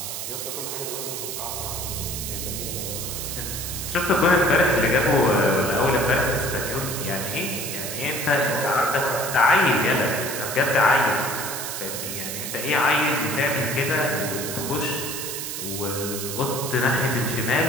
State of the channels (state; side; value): noise; right; hiss, 5 dB below the sound